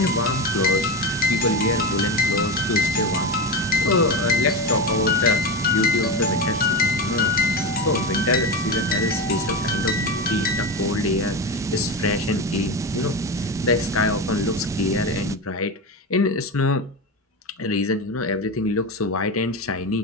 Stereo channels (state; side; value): normal; both; correlation 0.19